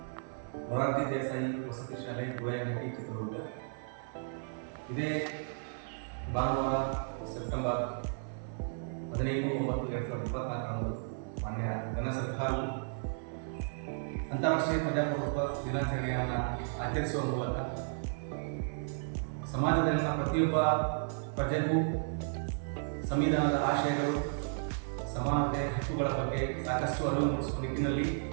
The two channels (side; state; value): left; silent; 55 dB below the other